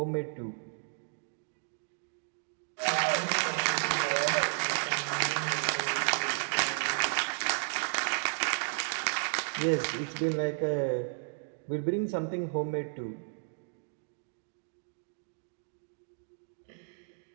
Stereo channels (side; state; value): left; silent; digital silence